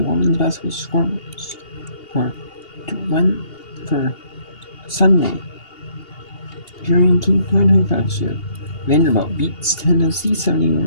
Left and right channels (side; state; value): right; late; 2.8 ms